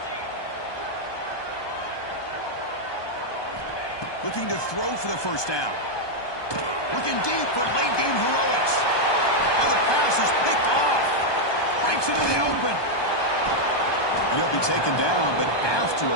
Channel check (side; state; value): right; late; 1.2 ms